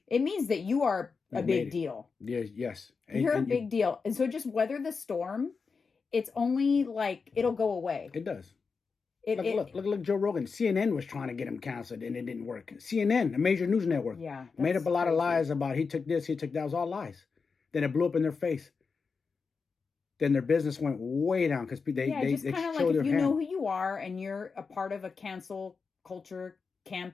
It means that you are a big deal. Yes. You're a big deal. And so just weather the storm. It's only like, it'll go away. It does. Look, Joe Rogan. CNN was trying to get him canceled and it didn't work. CNN, a major news network, made up a lot of lies about he took this, he took that. It was all lies. Then it blew up in their face. Then their business went way down because they just kind of like, if you know who you are and you're a part of a cancel culture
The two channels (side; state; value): right; quieter; 5.0 dB